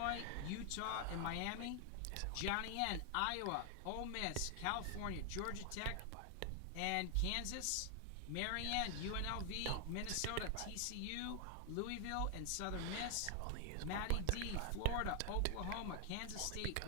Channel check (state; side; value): different; both; correlation 0.00